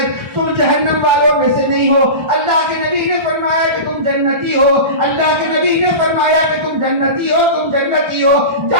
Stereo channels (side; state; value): left; late; 1.3 ms